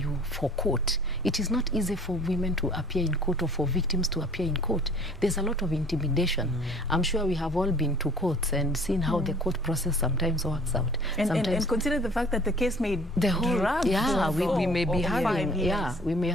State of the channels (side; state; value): both; normal; correlation 0.51